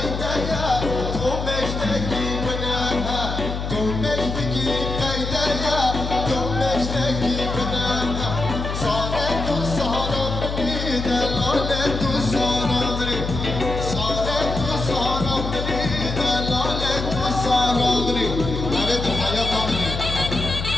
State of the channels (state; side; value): noise; left; hum, 4 dB below the sound